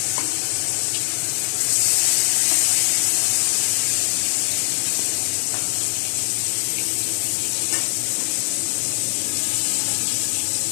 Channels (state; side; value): silent; right; digital silence